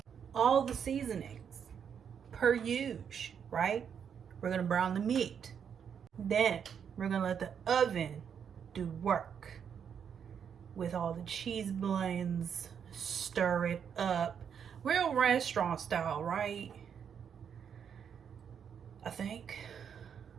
All the seasonings per use, right? We're gonna brown the meat. Then we're gonna let the oven do work with all the cheese blends. Stir it up, real restaurant style, right? I think.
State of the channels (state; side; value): quieter; left; 7.6 dB